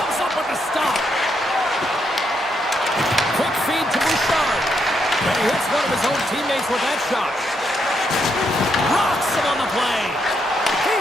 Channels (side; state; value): both; normal; correlation 0.78